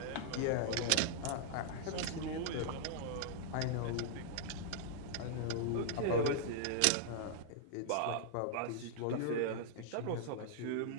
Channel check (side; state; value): both; different; correlation -0.01